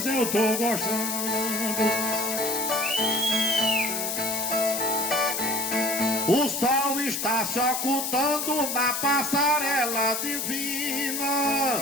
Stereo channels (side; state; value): left; noise; hiss, 2 dB below the sound